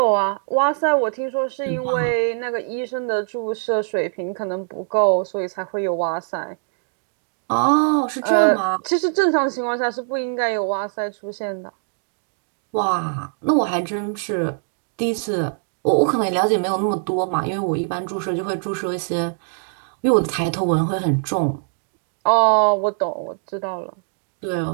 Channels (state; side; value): silent; left; digital silence